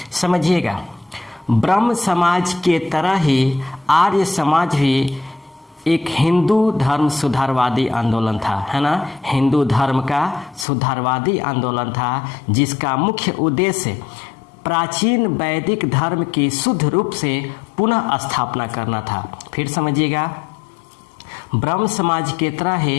समझिएगा, ब्रह्म समाज के तरह ही आर्य समाज भी एक हिंदू धर्म सुधारवादी आंदोलन था, है ना। हिंदू धर्म का सुधारवादी आंदोलन था, जिसका मुख्य उद्देश्य प्राचीन वैदिक धर्म की शुद्ध रूप से पुनः स्थापना करना था। फिर समझिएगा, ब्रह्म समाज के तरह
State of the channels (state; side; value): drops out; right; at 10.7 s